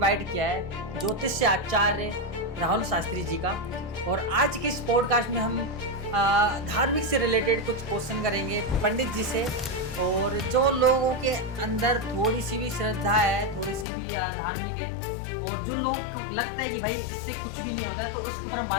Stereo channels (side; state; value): right; drops out; at 13.9 s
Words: किया है ज्योतिष से आचार्य राहुल शास्त्री जी का। और आज के इस पॉडकास्ट में हम धार्मिक से रिलेटेड कुछ क्वेश्चन करेंगे पंडित जी से। और जो लोगों के अंदर थोड़ी सी भी श्रद्धा है, थोड़ी सी भी धार्मिक है, और जो लोग को लगता है कि भाई इससे कुछ भी नहीं होता है, तो उसके ऊपर हम